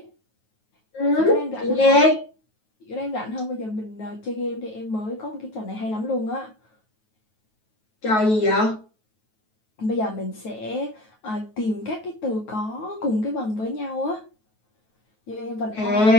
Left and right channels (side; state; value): right; late; 9.3 ms